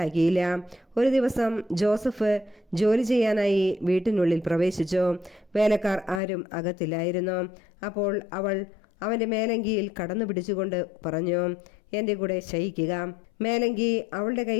ഒരു ദിവസം ജോസഫ് ജോലി ചെയ്യാനായി വീട്ടിനുള്ളിൽ പ്രവേശിച്ചു. വേലക്കാർ ആരും അകത്തില്ലായിരുന്നു. അപ്പോൾ അവൾ അവൻ്റെ മേലങ്കിയിൽ കടന്നു പിടിച്ചുകൊണ്ട് പറഞ്ഞു, എൻ്റെ കൂടെ ശയിക്കുക. മേലങ്കി അവളുടെ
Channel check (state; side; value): drops out; right; at 6.2 s